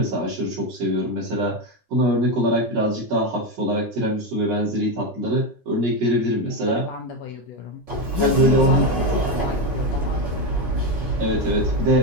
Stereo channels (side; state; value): both; normal; correlation 0.12